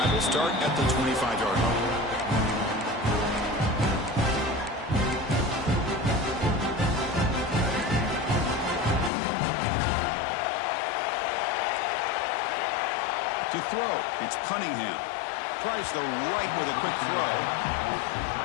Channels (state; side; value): drops out; right; at 9.1 s